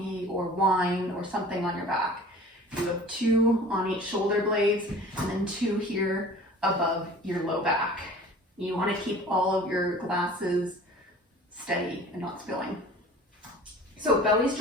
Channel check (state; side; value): normal; both; correlation 0.44